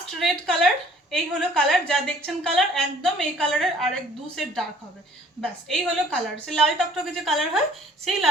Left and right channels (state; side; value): normal; both; correlation 0.55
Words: রেড কালার, এই হলো কালার। যা দেখছেন কালার একদম এই কালারের আরেক দু সেট ডার্ক হবে, ব্যাস এই হলো কালার। সে লাল টকটকে যে কালার হয় সেই